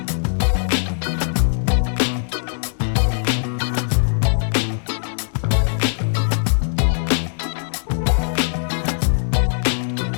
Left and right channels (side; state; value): right; silent; digital silence